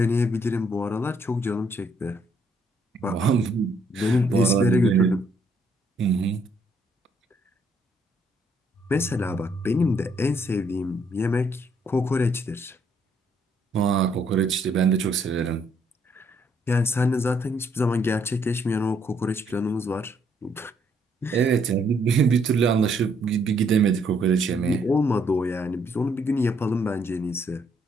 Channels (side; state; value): both; normal; correlation 0.69